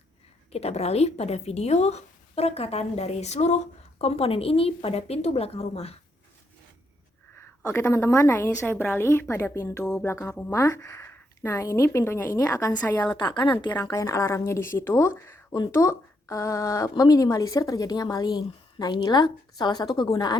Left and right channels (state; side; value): normal; both; correlation 0.77